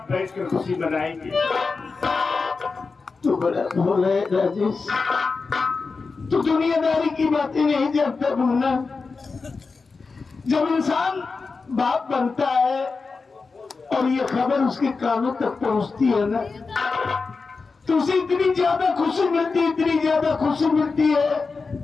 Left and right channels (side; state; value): right; quieter; 4.4 dB